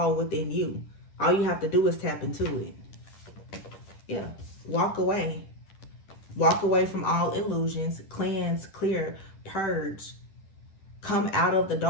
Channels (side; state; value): right; late; 10 ms